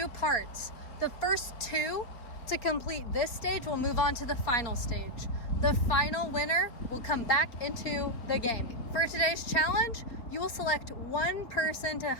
parts. The first 2 to complete this stage will move on to the final stage. The final winner will come back into the game. For today's challenge, you will select one person to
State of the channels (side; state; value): right; late; 4.0 ms